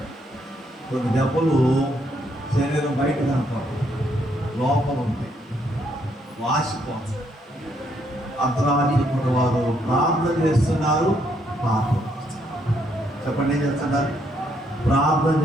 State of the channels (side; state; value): both; normal; correlation 0.73